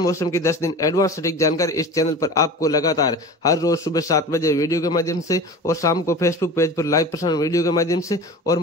की 10 दिन एडवांस सटीक जानकारी इस चैनल पर आपको लगातार हर रोज सुबह 7 बजे वीडियो के माध्यम से और शाम को फेसबुक पेज पर लाइव प्रसारण वीडियो के माध्यम से और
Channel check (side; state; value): both; normal; correlation 0.35